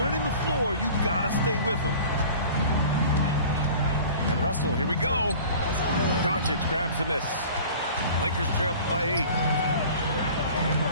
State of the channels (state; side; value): inverted; both; correlation -0.43